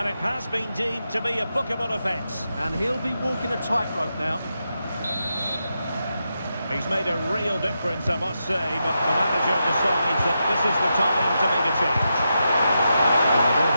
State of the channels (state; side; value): inverted; both; correlation -0.86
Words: it has been deemed to be a bookable offence. And he'll be walking a tightrope now. He's made a real difference, I must say, but the manager decides that this is the time to make a change. And the ball